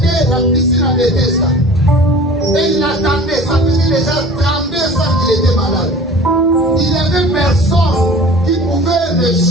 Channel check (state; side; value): normal; both; correlation 0.43